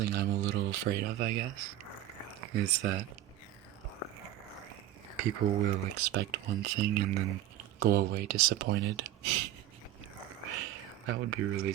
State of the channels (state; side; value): quieter; left; 13.2 dB